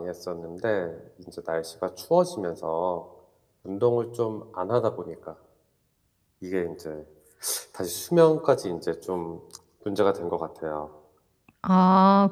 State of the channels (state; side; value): identical; both; correlation 1.00